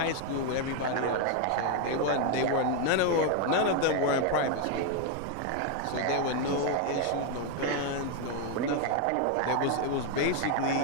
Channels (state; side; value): different; both; correlation 0.01